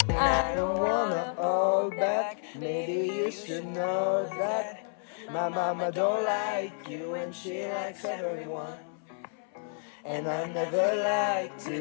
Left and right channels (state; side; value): silent; right; 58 dB below the other